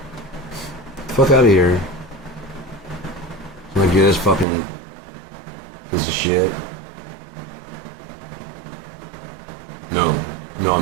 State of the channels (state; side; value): drops out; left; at 4.5 s